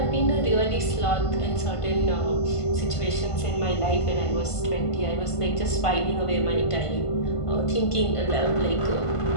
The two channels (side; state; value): right; late; 1.5 ms